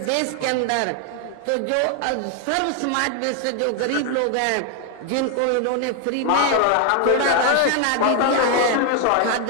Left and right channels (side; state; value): both; different; correlation 0.00